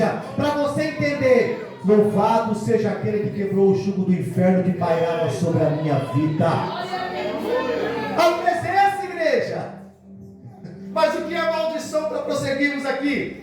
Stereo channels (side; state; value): both; identical; correlation 1.00